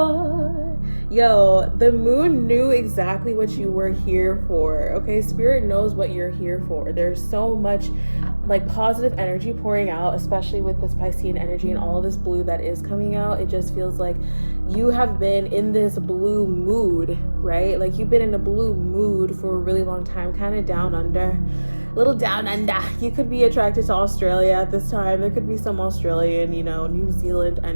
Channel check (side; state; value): both; inverted; correlation -1.00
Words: Yo, the moon knew exactly what you were here for, okay? Spirit knows what you're here for. There's so much like positive energy pouring out, especially with this Piscean energy and all of this blue that is coming out. It just feels like you have been in this blue mood, right? Like you've been in a blue mood for a really long time, kind of down under. Little down under. You could be attracted to Australia at this time. There could be some Australian, New Zealand